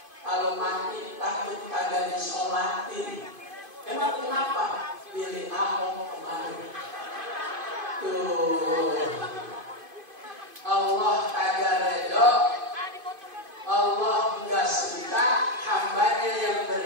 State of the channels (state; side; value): late; left; 2.5 ms